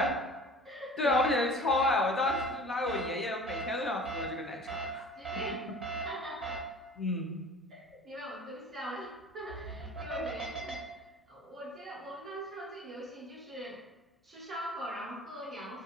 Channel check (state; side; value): normal; both; correlation 0.43